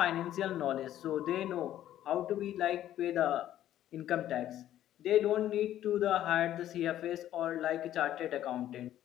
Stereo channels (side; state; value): right; quieter; 12.2 dB